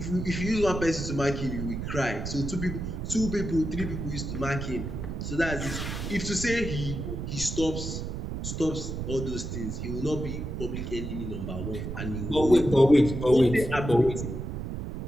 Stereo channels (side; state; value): right; noise; rumble, 5 dB below the sound